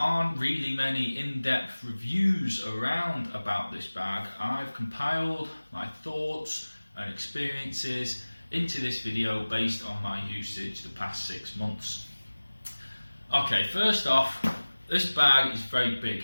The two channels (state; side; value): inverted; both; correlation -1.00